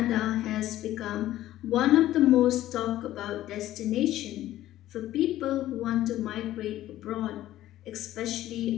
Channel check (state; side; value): quieter; right; 14.0 dB